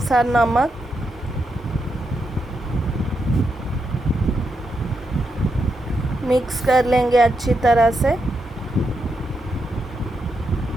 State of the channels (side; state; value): both; normal; correlation 0.83